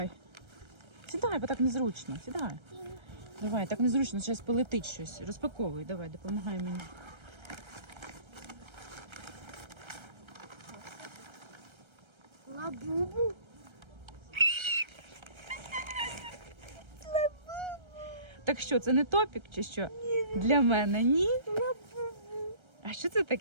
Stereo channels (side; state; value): left; late; 1.3 ms